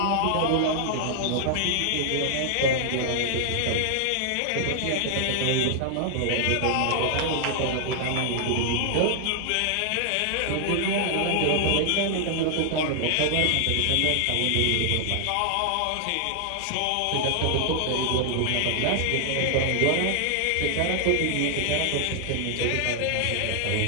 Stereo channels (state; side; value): different; both; correlation 0.00